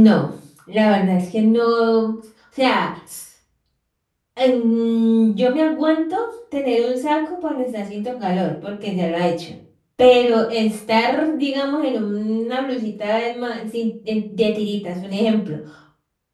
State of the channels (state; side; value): identical; both; correlation 1.00